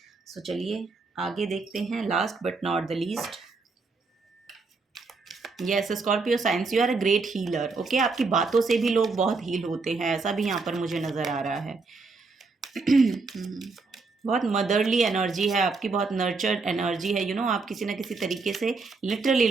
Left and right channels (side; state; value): left; quieter; 4.1 dB